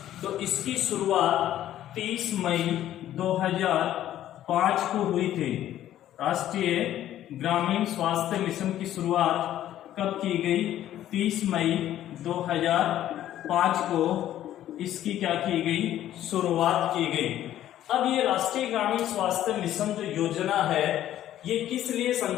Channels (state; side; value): quieter; right; 12.4 dB